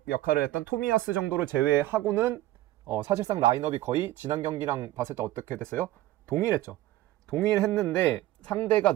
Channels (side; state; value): left; quieter; 15.6 dB